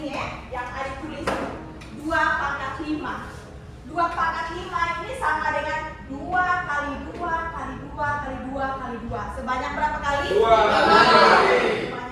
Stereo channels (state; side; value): identical; both; correlation 1.00